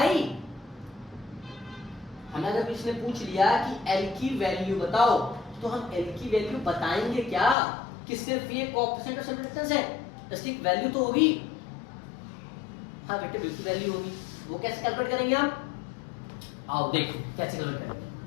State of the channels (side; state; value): right; drops out; at 7.6 s